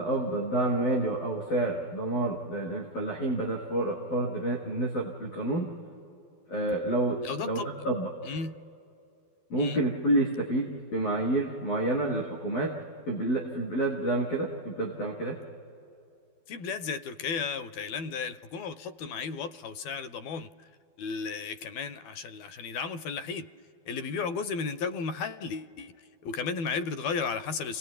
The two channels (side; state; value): right; late; 12 ms